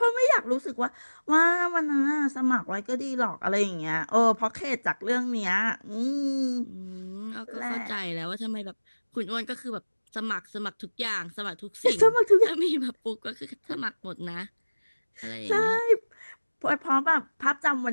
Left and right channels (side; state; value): both; inverted; correlation -1.00